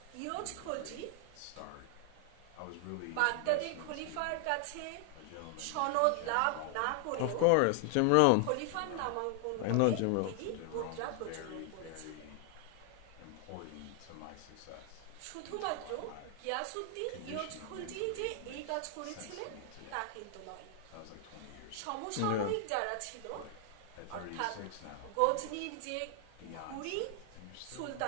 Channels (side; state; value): both; different; correlation 0.00